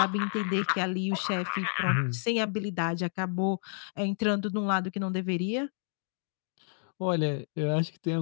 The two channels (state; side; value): silent; right; digital silence